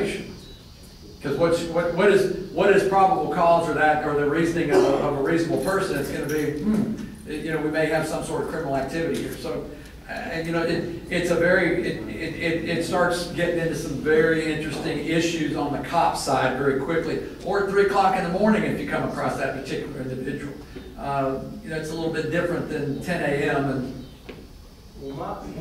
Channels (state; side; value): identical; both; correlation 1.00